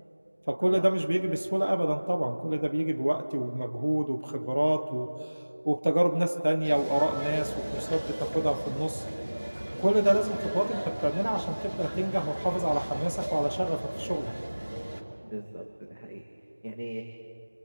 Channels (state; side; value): inverted; both; correlation -1.00